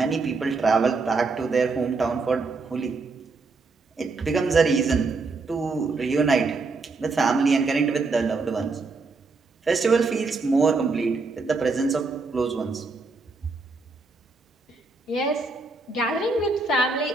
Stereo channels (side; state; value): left; quieter; 3.9 dB